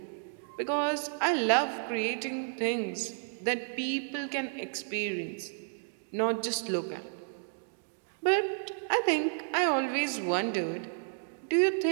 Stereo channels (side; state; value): left; silent; digital silence